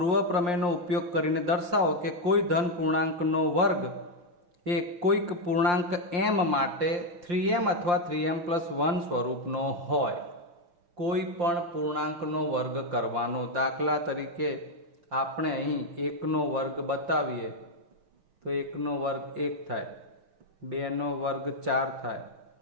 પ્રમેયનો ઉપયોગ કરીને દર્શાવો કે કોઈ ધન પૂર્ણાંકનો વર્ગ એ કોઈક પૂર્ણાંક m માટે 3m અથવા 3m પ્લસ 1 સ્વરૂપનો હોય. કોઈ પણ પૂર્ણાંકનો વર્ગ કરવાનો. દાખલા તરીકે આપણે અહીં 1 નો વર્ગ બતાવીએ તો 1 નો વર્ગ 1 થાય, 2 નો વર્ગ 4 થાય,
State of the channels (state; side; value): late; left; 5.7 ms